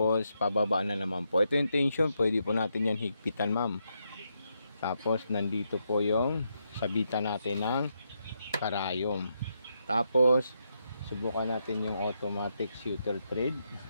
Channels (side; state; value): both; inverted; correlation -0.81